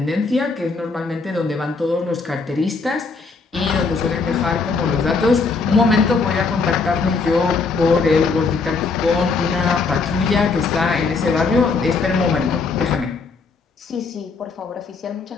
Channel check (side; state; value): right; quieter; 4.4 dB